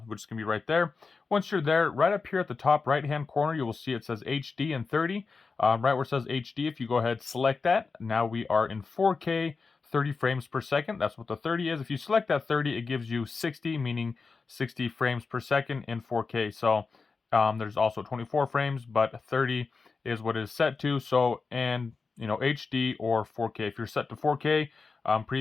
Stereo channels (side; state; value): right; quieter; 4.6 dB